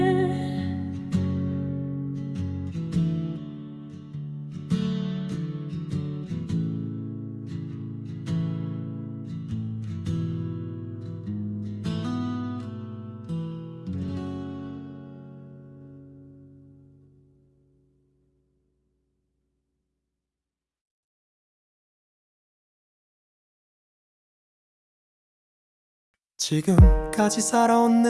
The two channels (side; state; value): both; identical; correlation 1.00